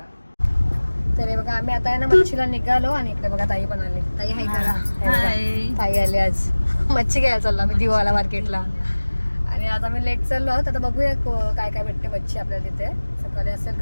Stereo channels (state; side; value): inverted; both; correlation -1.00